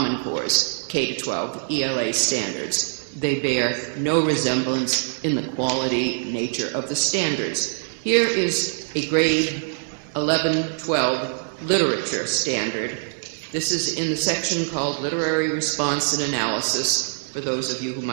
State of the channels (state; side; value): silent; left; digital silence